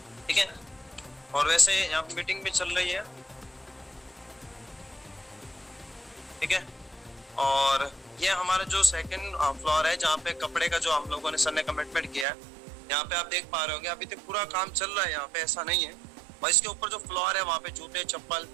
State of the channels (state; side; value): drops out; left; at 12.2 s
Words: ठीक है। और वैसे यहाँ पे मीटिंग भी चल रही है, ठीक है। और ये हमारा जो सेकंड फ्लोर है जहाँ पे कपड़े का जो हम लोगों ने सर ने कमिटमेंट किया है, यहाँ पे आप देख पा रहे होंगे अभी तक पूरा काम चल रहा है यहाँ पे, ऐसा नहीं है। और इसके ऊपर जो फ्लोर है वहाँ पे जूते, चप्पल